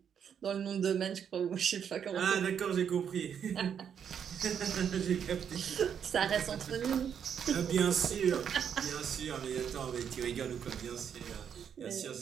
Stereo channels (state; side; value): quieter; left; 8.0 dB